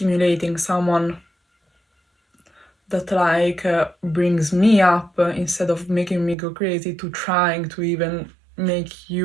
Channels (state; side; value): drops out; left; at 6.4 s